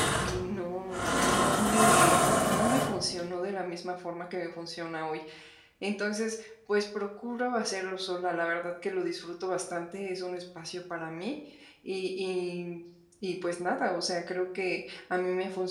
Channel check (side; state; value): both; identical; correlation 1.00